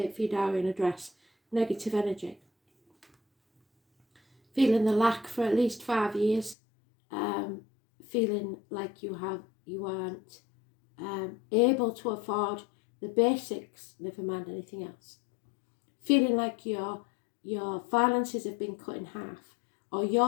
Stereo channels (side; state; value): right; drops out; at 6.6 s